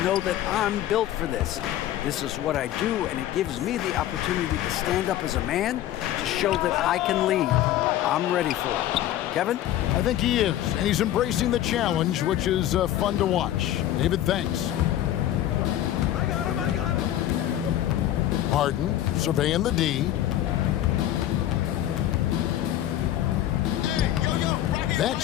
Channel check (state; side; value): quieter; right; 12.7 dB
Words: know that I'm built for this. This is what I do, and it gives me the opportunity to stand up as a man to show that I can lead. I'm ready for it. Kevin? I think he is, and he's embracing the challenge, which is fun to watch. David, thanks. Harden surveying the D. That